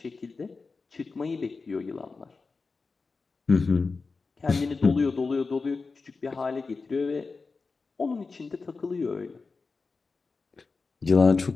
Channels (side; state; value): right; quieter; 4.3 dB